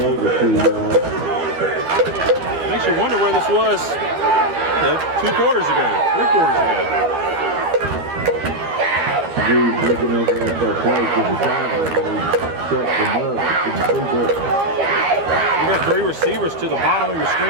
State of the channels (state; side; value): late; left; 12 ms